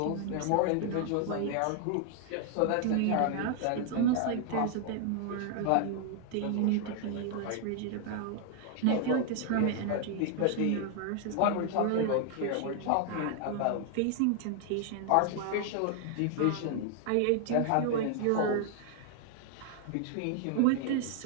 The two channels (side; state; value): both; different; correlation 0.00